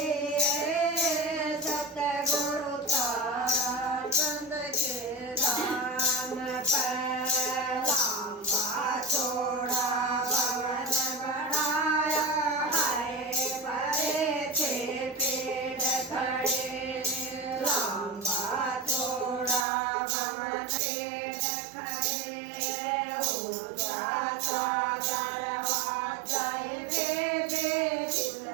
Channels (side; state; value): left; drops out; at 19.7 s